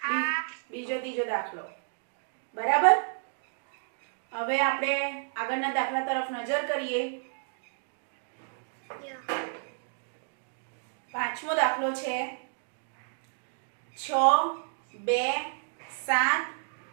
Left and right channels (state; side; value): silent; left; digital silence